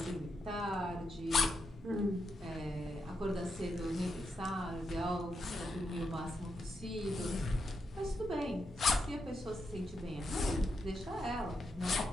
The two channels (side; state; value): both; normal; correlation 0.83